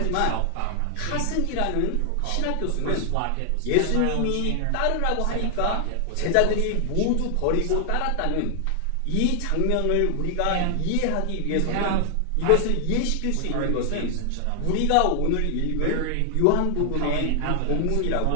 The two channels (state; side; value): different; both; correlation 0.00